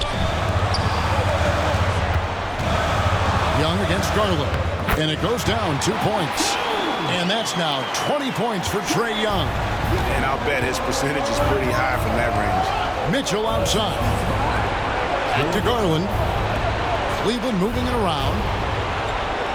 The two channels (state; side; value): identical; both; correlation 1.00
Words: Young against Garland. And it goes down 2 points. And that's now 20 points for Trae Young. And I'll bet his percentage is pretty high from that range. Mitchell outside. Back to Garland. Cleveland moving it around.